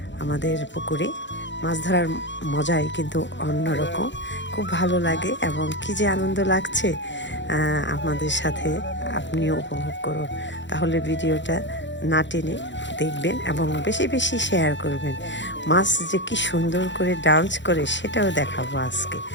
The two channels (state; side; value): late; right; 0.53 ms